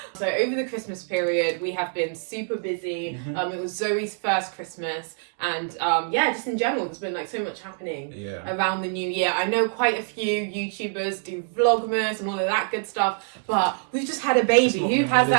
So over the Christmas period, we have been super busy. It was Zoe's first Christmas, and just in general, there's been so much happening around the new year. I know quite a few YouTubers do Vlogmas and all of that good stuff, but we've just had a baby. Who has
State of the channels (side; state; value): left; silent; 62 dB below the other